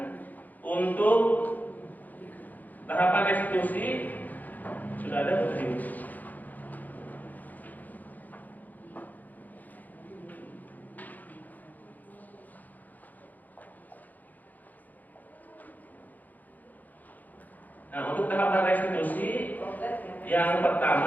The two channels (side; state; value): right; late; 0.082 ms